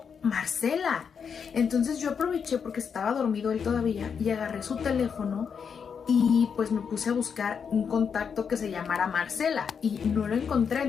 Marcela. Entonces yo aproveché porque estaba dormido él todavía y agarré su teléfono y pues me puse a buscar un contacto que se llamara Marcela y no lo encontré.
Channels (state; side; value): quieter; right; 6.6 dB